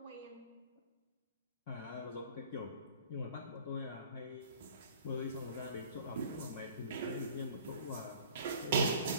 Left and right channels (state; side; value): inverted; both; correlation -0.48